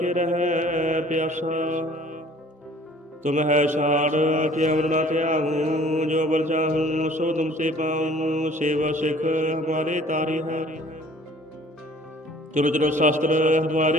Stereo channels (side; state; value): both; normal; correlation 0.52